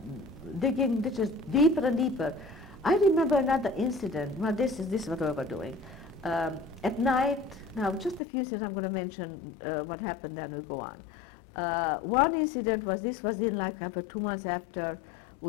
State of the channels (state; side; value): drops out; right; at 8.2 s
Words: digging ditches deeper and deeper. I remember another incident. Well, this is what we were doing. At night, now just a few things I'm going to mention what happened, then we'll go on. One incident was, this was in like after 2 months after